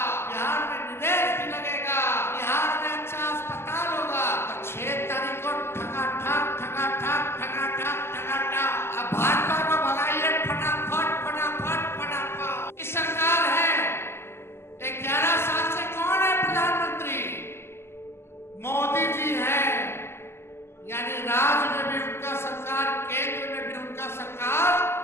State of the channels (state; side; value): late; right; 0.12 ms